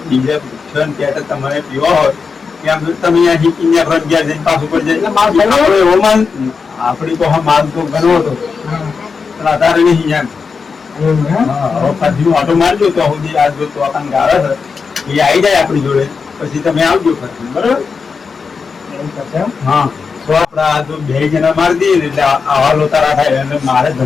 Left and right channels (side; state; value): right; quieter; 5.2 dB